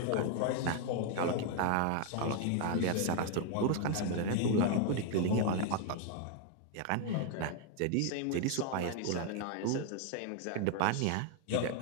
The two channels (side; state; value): both; different; correlation 0.00